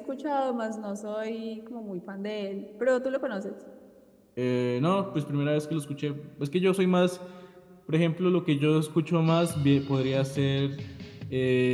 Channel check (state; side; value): identical; both; correlation 1.00